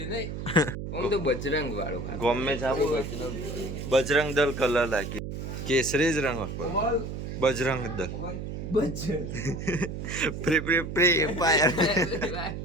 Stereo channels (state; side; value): noise; right; hum, 6 dB below the sound